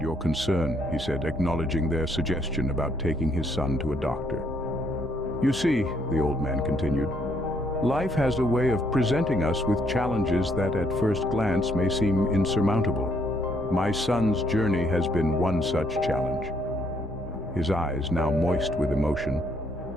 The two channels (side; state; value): both; normal; correlation 0.70